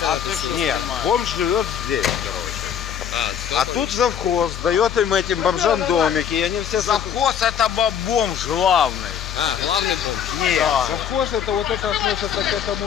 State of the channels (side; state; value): right; quieter; 8.6 dB